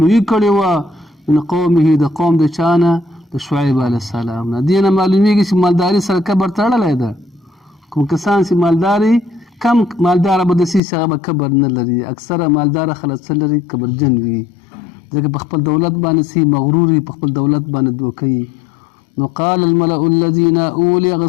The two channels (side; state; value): right; drops out; at 10.8 s